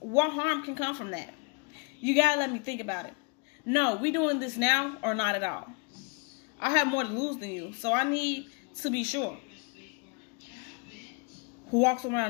harm can come from that? You gotta let me think about it. No, we doing this now or not at all. I have more to lose than you, so I need to be sure. Who walks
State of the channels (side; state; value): right; quieter; 31.9 dB